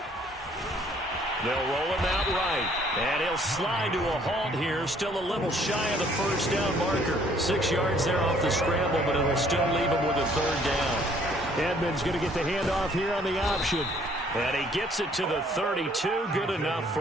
They'll roll him out right. And he'll slide to a halt here. Still a little shy of the 1st down marker. 6 yards there off the scramble, but it'll still leave him with a 3rd down. Edmonds going to get the handoff here on the option. And he gets it to the 32. Good enough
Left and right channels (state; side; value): normal; both; correlation 0.61